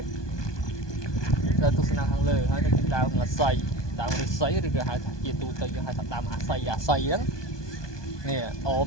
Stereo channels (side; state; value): right; late; 1.2 ms